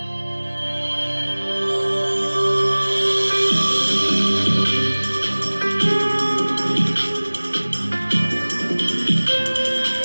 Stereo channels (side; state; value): both; inverted; correlation -1.00